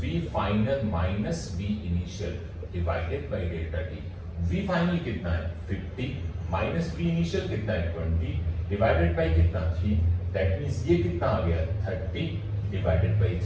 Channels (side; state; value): both; identical; correlation 1.00